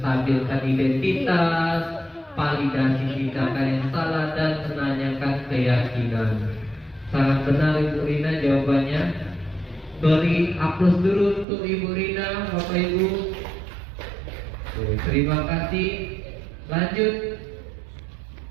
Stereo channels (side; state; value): left; drops out; at 11.5 s